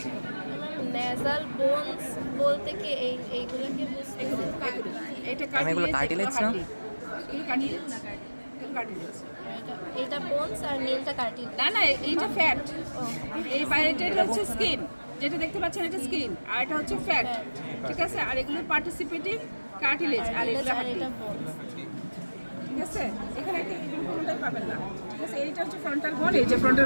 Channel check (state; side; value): inverted; both; correlation -1.00